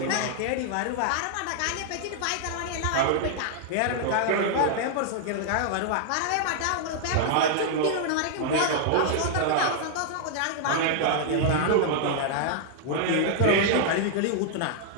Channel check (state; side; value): different; both; correlation -0.01